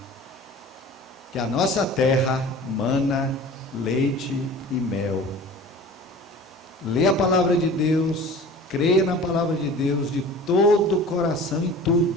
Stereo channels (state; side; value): normal; both; correlation 0.41